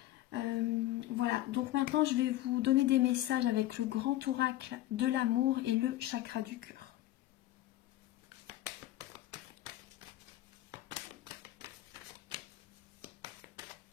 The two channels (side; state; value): right; quieter; 15.1 dB